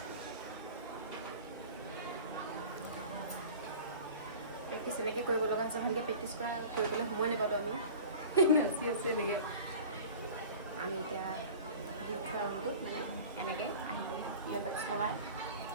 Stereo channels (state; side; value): inverted; both; correlation -0.40